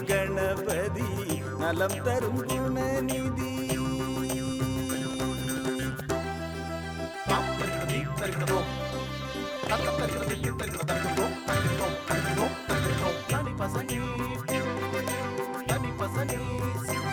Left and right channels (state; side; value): identical; both; correlation 1.00